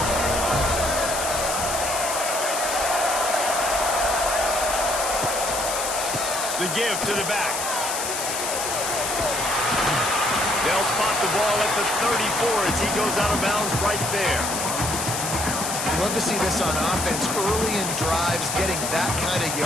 The give to the back. They'll spot the ball at the 34 as he goes out of bounds right there. You love to see this on offense. Early in drives, getting that kind of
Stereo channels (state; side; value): noise; left; hiss, 3 dB below the sound